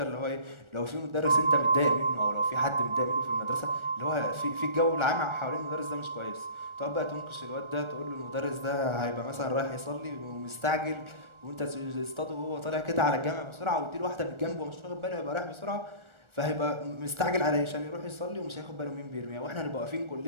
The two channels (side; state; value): left; late; 1.4 ms